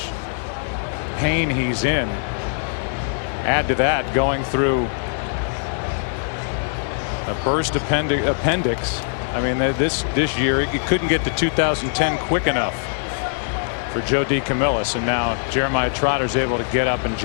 pain he's in. Add to that going through a burst appendix. I mean, this year it couldn't get to 2010 quick enough for Joe DeCamillis, and now Jeremiah Trotter's able to get up and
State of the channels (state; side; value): silent; right; digital silence